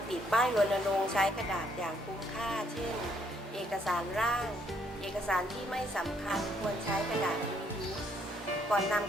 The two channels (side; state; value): both; normal; correlation 0.69